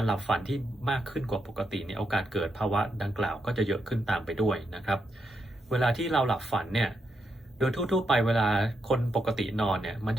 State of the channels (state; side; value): normal; both; correlation 0.82